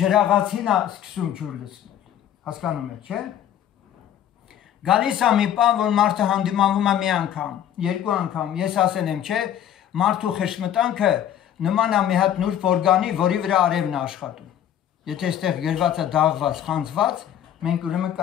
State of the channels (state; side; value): quieter; right; 10.5 dB